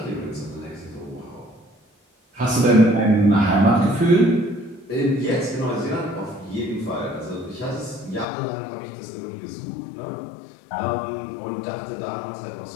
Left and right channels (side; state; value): right; drops out; at 8.2 s